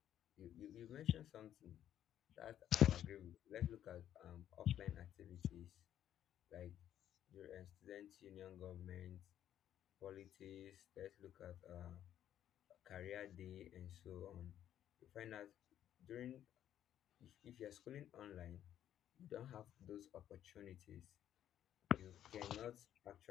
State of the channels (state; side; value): quieter; right; 11.0 dB